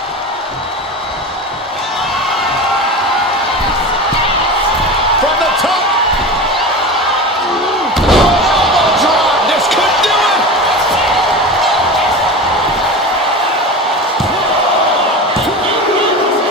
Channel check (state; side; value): normal; both; correlation 0.29